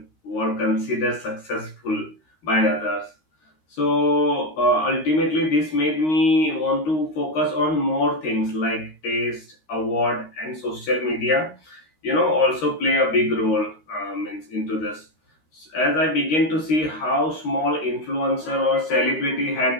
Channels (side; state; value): right; late; 13 ms